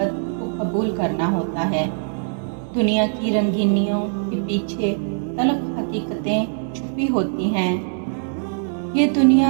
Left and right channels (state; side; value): silent; left; digital silence